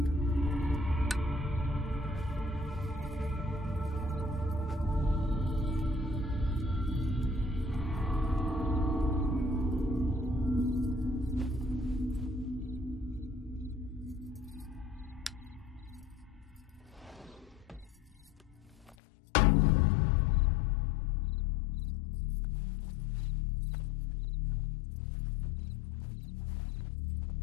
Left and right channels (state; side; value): drops out; right; at 18.9 s